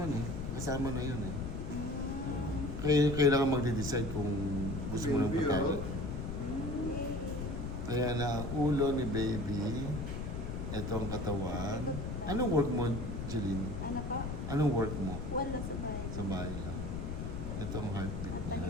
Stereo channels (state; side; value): noise; left; rumble, 4 dB below the sound